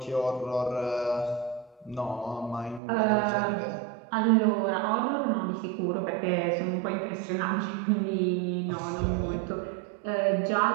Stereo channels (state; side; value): drops out; left; at 2.8 s